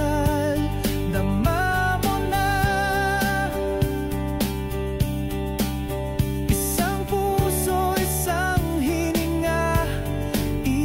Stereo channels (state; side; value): identical; both; correlation 1.00